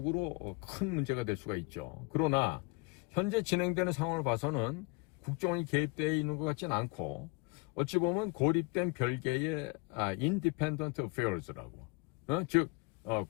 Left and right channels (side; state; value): right; quieter; 27.0 dB